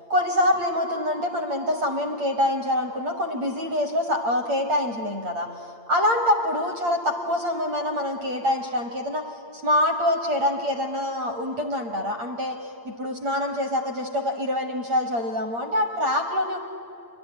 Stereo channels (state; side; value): late; left; 8.6 ms